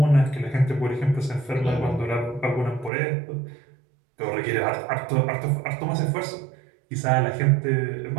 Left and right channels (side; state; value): left; drops out; at 2.9 s